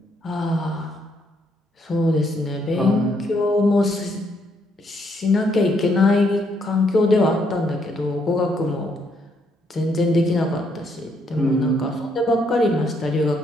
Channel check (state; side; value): normal; both; correlation 0.73